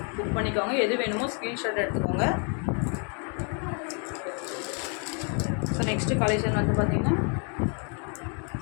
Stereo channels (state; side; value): quieter; right; 39.1 dB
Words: புக் பண்ணிக்கோங்க. எது வேணுமோ ஸ்க்ரீன்ஷாட் எடுத்துக்கோங்க. ஸோ நெக்ஸ்ட்டு கலெக்ஷன் வந்து பார்த்திங்கன்னா